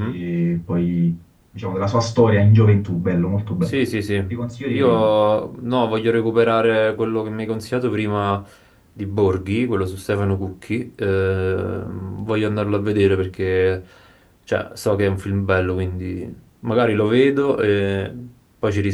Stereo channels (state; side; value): identical; both; correlation 1.00